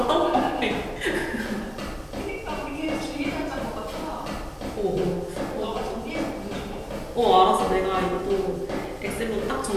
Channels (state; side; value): identical; both; correlation 1.00